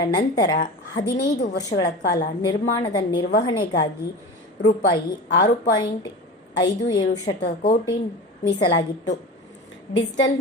ನಂತರ 15 ವರ್ಷಗಳ ಕಾಲ ನಿರ್ಮಾಣದ ನಿರ್ವಹಣೆಗಾಗಿ ರೂಪಾಯಿ 6.57 ಕೋಟಿ ಮೀಸಲಾಗಿತ್ತು. ಡಿಜಿಟಲ್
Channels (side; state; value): both; normal; correlation 0.31